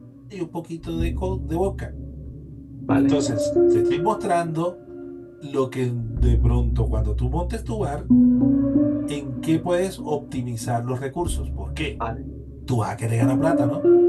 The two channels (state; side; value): identical; both; correlation 1.00